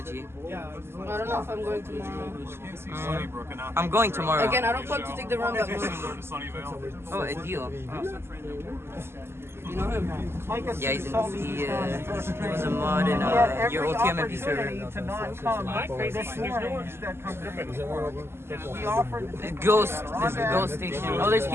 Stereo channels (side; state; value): left; late; 0.12 ms